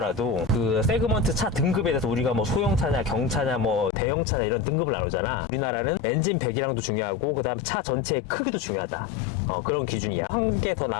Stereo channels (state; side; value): drops out; right; at 3.9 s